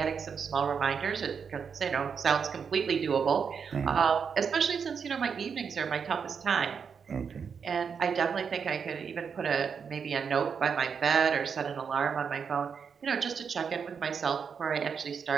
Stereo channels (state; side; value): quieter; left; 6.4 dB